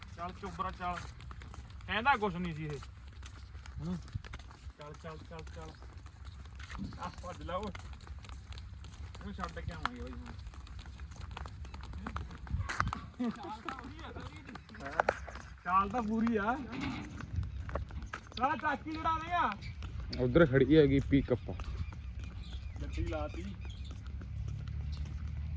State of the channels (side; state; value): both; identical; correlation 1.00